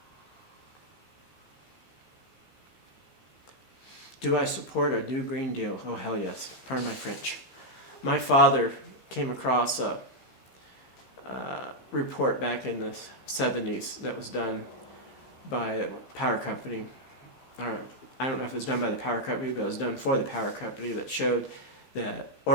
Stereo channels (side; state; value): right; late; 15 ms